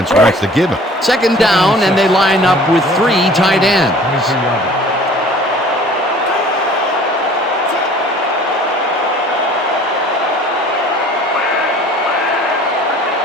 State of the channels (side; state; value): both; normal; correlation 0.49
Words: wants to give him. Second down, and they line up with 3 tight ends.